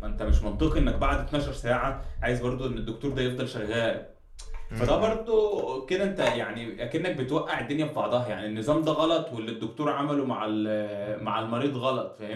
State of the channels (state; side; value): identical; both; correlation 1.00